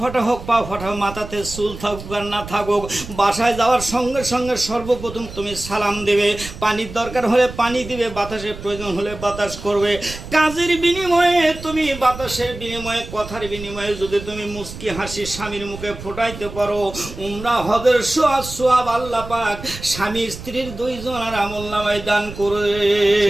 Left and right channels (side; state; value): right; noise; rumble, 12 dB below the sound